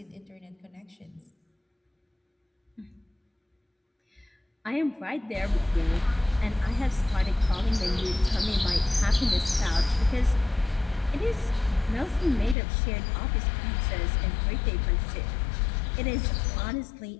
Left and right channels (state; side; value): drops out; right; at 12.6 s